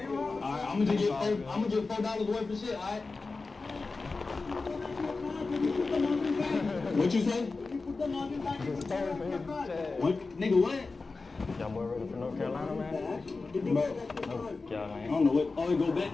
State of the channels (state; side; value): quieter; right; 3.9 dB